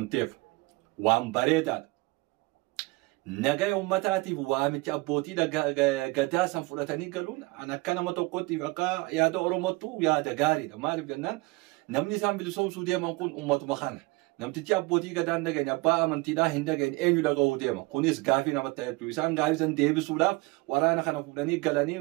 تيف وان بريداد نجاي أمتاتي وامتي أبوتي قدا سنفرتني قالون أنا كنا متوقعتي فكا يا دا أورموتو يا دا غاري دا مالي بجنان نمني سام بلسوم سوديا منكون أمت مخانة نمتي أبوتي قدا نجاي نبا أمنتي دا هندجاي أنيو دا قهوديا ما كونيس غافي نمتايتو إنسان غافي سن ديبي سودا ورانا خنا فلاني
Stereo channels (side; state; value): left; quieter; 24.1 dB